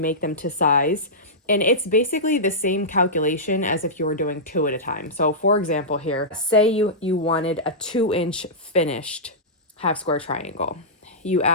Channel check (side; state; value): both; normal; correlation -0.14